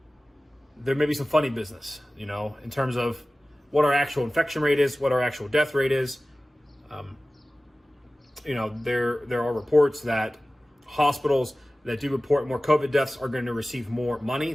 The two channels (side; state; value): both; normal; correlation 0.97